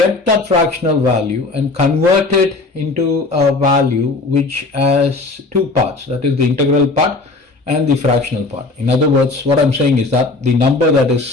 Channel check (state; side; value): quieter; right; 3.5 dB